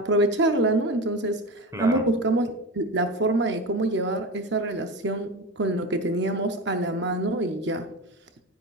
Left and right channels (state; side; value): normal; both; correlation 0.24